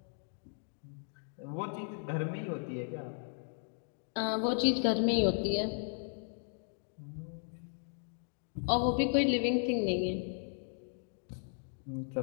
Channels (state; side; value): silent; right; 54 dB below the other